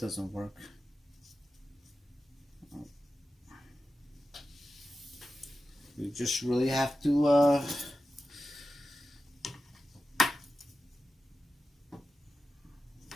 work. You just really have to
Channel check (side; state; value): both; normal; correlation 0.93